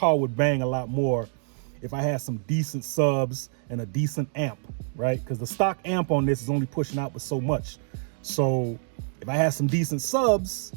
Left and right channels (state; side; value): silent; left; digital silence